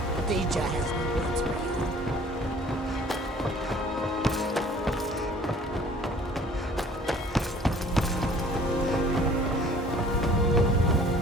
Deja has good words for you.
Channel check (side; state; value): both; normal; correlation 0.52